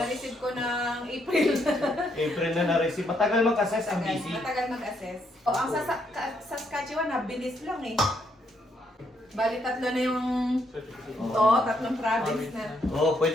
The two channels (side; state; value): both; normal; correlation 0.74